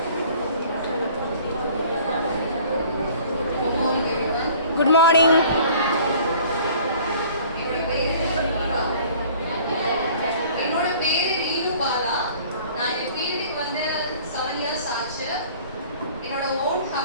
Good morning. என்னோட பேரு ரீனு பாலா. நான் இந்த ஃபீல்டுக்கு வந்து 7 இயர்ஸ் ஆச்சு. என்னோட ஓன்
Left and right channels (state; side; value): inverted; both; correlation -0.51